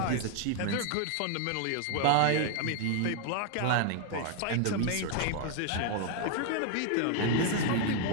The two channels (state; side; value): different; both; correlation 0.00